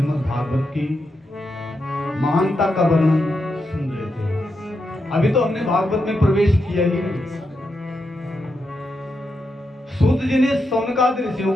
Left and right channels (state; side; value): normal; both; correlation 0.85